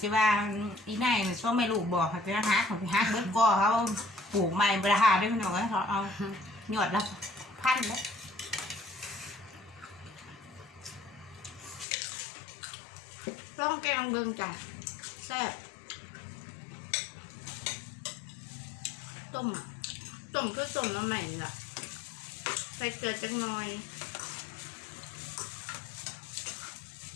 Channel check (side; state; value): right; drops out; at 11.9 s